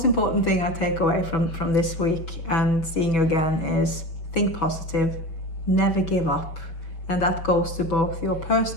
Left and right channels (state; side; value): late; right; 6.1 ms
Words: important thing I take away from this week and seeing you again is think positive, never give up, and that goes to both your